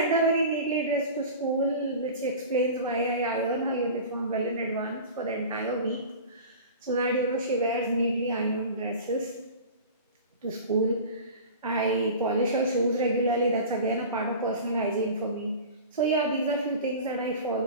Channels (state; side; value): inverted; both; correlation -0.36